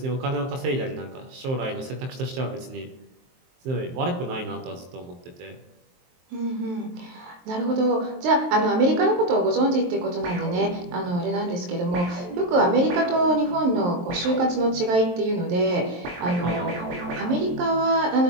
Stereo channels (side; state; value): left; late; 23 ms